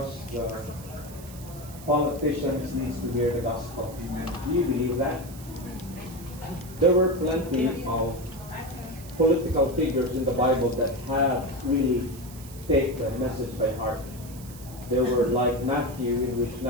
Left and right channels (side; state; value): right; noise; hiss, 18 dB below the sound